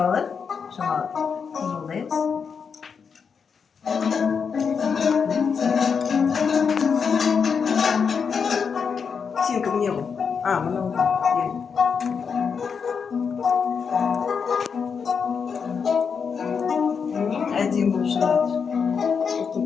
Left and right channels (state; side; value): quieter; right; 6.1 dB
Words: Шоколад. Жолдаймыз. Сенька мне ғой. Мынау. Әдемі болып шығады.